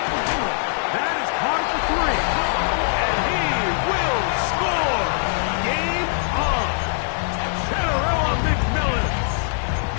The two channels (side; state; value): right; silent; digital silence